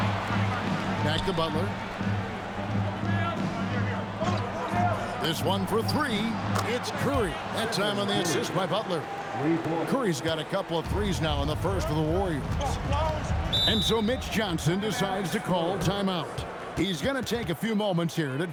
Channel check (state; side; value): identical; both; correlation 1.00